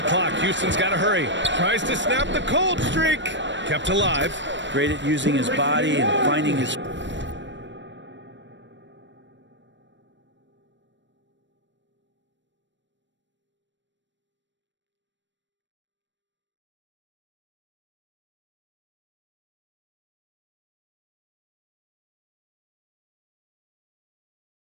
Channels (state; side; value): late; left; 0.53 ms